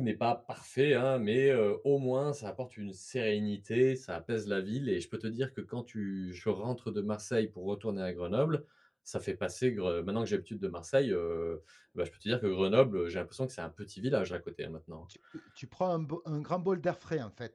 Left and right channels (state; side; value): identical; both; correlation 1.00